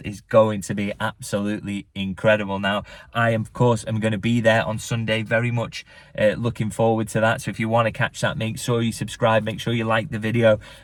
is going to be absolutely incredible. Now, I, of course, am going to be there on Sunday, very much looking forward to that. So if you want to catch that, make sure you subscribe, make sure you like the video.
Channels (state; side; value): identical; both; correlation 1.00